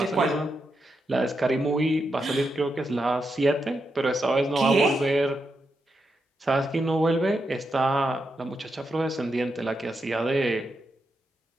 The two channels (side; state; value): both; normal; correlation 0.85